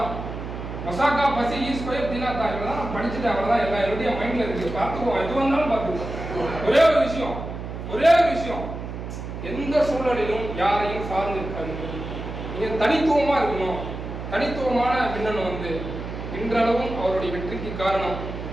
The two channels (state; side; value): noise; right; hum, 8 dB below the sound